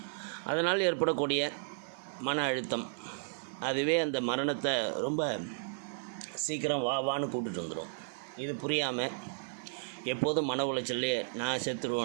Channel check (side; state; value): left; silent; digital silence